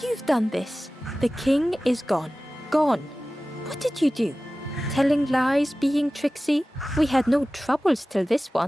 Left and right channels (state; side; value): normal; both; correlation 0.96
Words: You've done this. The king is gone. Gone. What did you do? Telling lies, being tricksy? We had no troubles till this